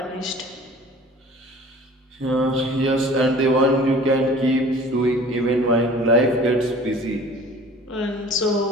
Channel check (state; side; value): normal; both; correlation 0.46